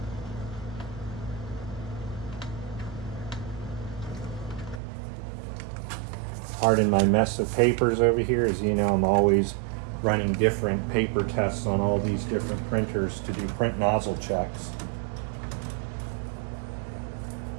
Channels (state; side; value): drops out; left; at 4.8 s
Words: Pardon my mess of papers over here. As you know, I'm always running different paper tests on all these different printers to do print nozzle checks.